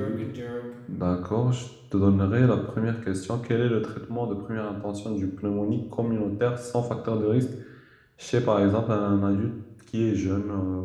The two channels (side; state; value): both; identical; correlation 1.00